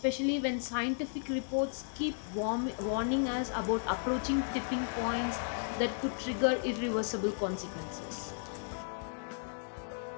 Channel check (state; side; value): silent; right; digital silence